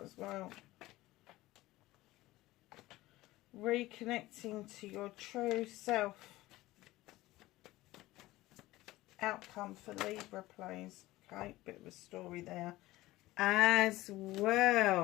as well. Reconnecting to your true self. Outcome for Libra, please. Okay, bit of a story there as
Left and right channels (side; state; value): right; quieter; 17.8 dB